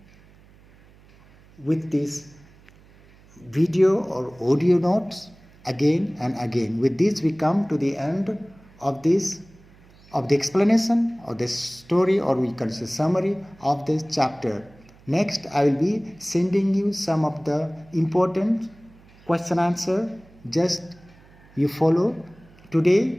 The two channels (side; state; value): right; noise; hum, 26 dB below the sound